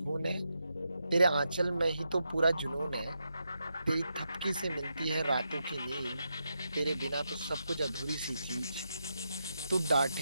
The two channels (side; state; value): both; inverted; correlation -0.85